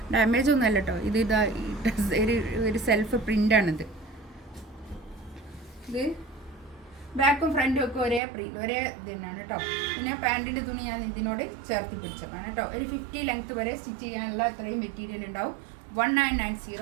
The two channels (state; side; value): drops out; left; at 8.2 s